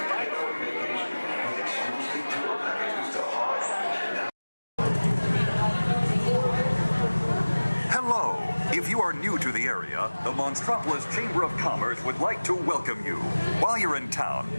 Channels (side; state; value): both; inverted; correlation -1.00